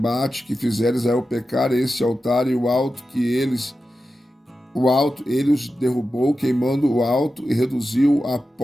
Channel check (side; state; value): both; normal; correlation 0.92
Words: que fizera Israel pecar, esse altar e o alto ele os derrubou, queimando o alto, e reduziu a